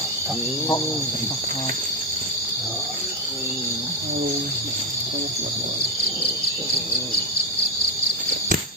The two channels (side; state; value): both; normal; correlation 0.08